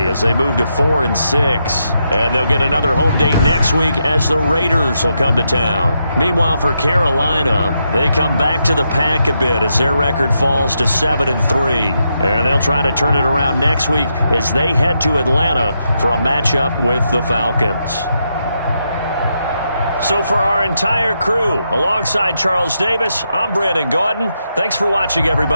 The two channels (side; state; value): both; inverted; correlation -0.82